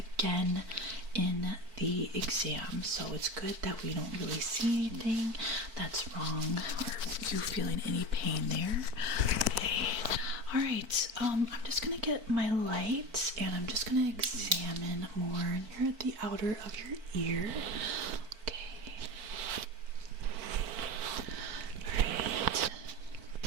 in the exam. So it's good that we don't really see anything that's wrong or you feeling any pain there. Okay. Alright, I'm just going to get my light and I'm just going to examine more near the outer of your ear. Okay. Alright.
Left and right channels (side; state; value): left; late; 4.5 ms